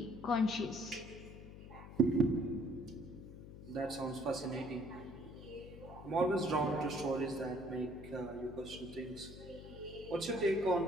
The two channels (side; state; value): left; noise; hum, 14 dB below the sound